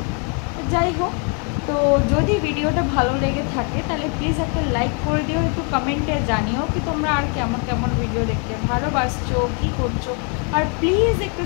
যাই হোক, তো যদি ভিডিওটা ভালো লেগে থাকে তাহলে প্লিজ একটা লাইক করে দিও, একটু কমেন্টে জানিও কি তোমরা আর কেমন কেমন ভিডিও দেখতে ভালোবাসছো, কী করছো। আর প্লিজ একটু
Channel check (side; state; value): right; quieter; 37.9 dB